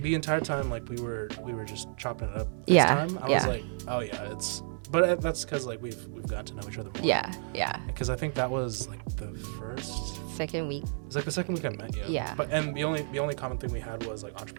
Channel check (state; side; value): silent; left; 57 dB below the other